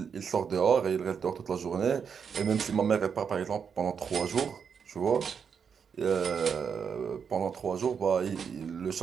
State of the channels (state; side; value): quieter; left; 6.7 dB